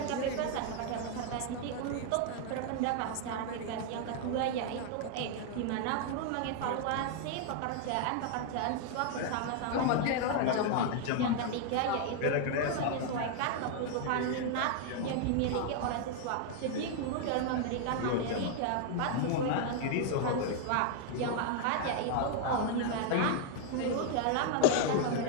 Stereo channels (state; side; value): different; both; correlation 0.00